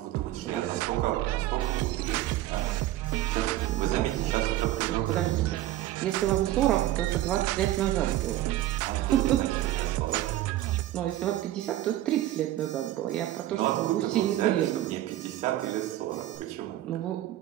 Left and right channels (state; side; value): quieter; left; 14.4 dB